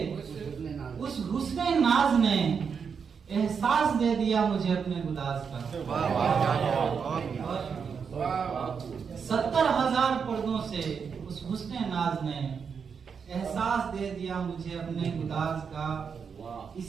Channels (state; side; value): quieter; left; 6.3 dB